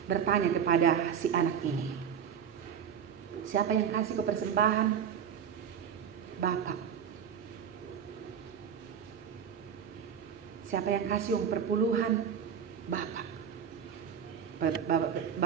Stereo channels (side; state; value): left; quieter; 8.0 dB